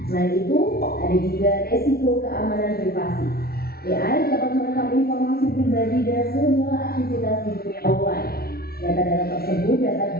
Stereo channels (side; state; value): right; late; 0.44 ms